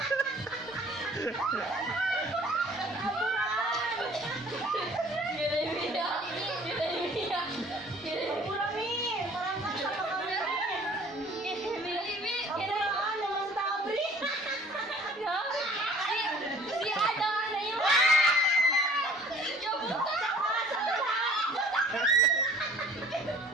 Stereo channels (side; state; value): both; normal; correlation 0.51